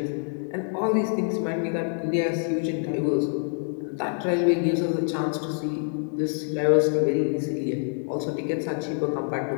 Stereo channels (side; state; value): right; silent; 61 dB below the other